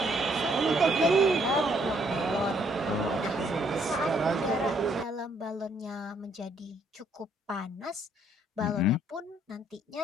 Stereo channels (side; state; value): both; normal; correlation 0.68